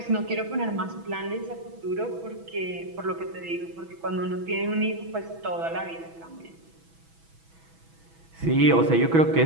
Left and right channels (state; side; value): late; left; 6.1 ms